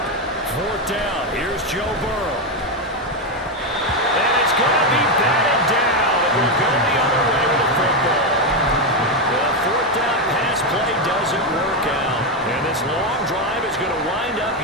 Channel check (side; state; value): both; normal; correlation 0.07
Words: 4th down. Here's Joe Burrow. And it's going to be batted down. It will go the other way with the football. The 4th down pass play doesn't work out. And this long drive is going to wind up